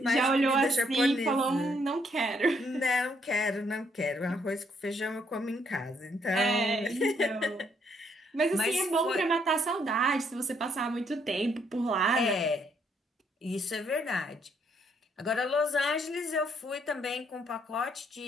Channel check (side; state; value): both; normal; correlation 0.71